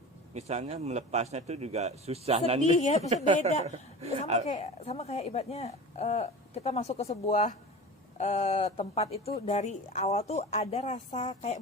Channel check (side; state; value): both; normal; correlation 0.34